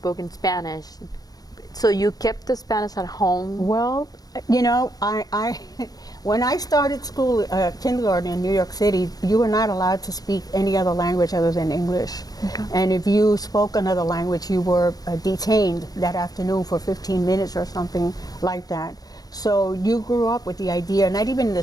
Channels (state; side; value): late; right; 0.18 ms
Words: Spanish, so you kept the Spanish at home. Well, you know, I when I started school, kindergarten in New York City, you were not allowed to speak any other language other than English. Okay. And if you spoke another language, you were detained that afternoon for 15 minutes or something like that. So you grew up with the idea, not even in the